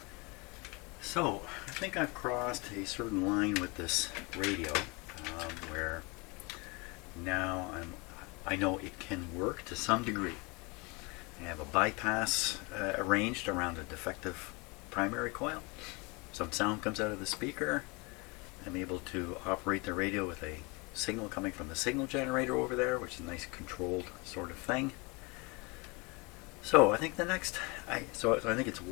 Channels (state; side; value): quieter; right; 28.2 dB